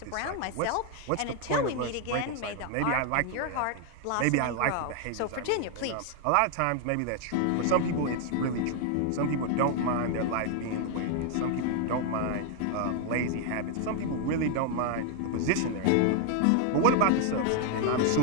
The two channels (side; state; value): both; different; correlation 0.00